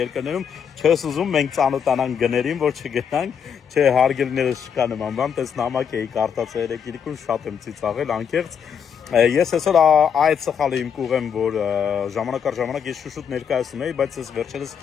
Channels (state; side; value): quieter; right; 7.5 dB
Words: չես ուզում մենք ծանոթանանք գներին, որ չգնանք, չէ հարգելիներս չկա նման բան, տես նամակ էի կարդացել երեկիրիկուն, շատ եմ ծիծաղել, անկեղծ։ Ես այսօր այդ սխալը իմ կուղեմ, որ ժամանակ առ ժամանակ ես շուշուտ ներկայացնում էի, բայց ես վերջերս